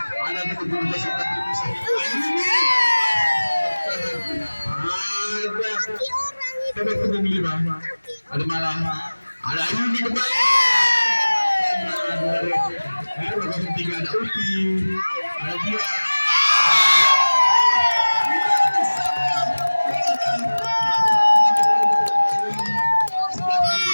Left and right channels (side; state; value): both; inverted; correlation -1.00